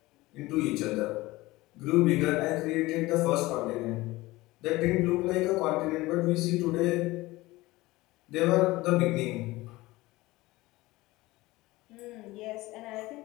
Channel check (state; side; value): quieter; right; 19.7 dB